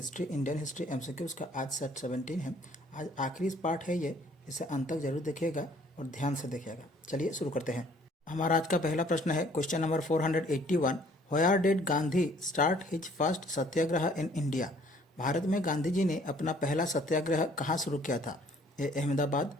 Indian history MCQs का आज सेट 17 है। आज आखिरी पार्ट है ये, इसे अंत तक जरूर देखिएगा और ध्यान से देखिएगा। चलिए शुरू करते हैं। हमारा आज का पहला प्रश्न है question number 481। Where did Gandhi start his first Satyagraha in India? Bharat में गांधी जी ने अपना पहला सत्याग्रह कहाँ शुरू किया था? ए अहमदाबाद,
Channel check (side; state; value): both; normal; correlation 0.59